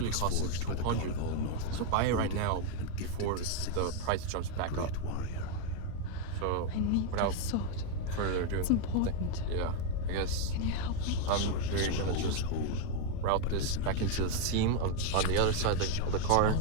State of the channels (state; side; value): different; both; correlation 0.01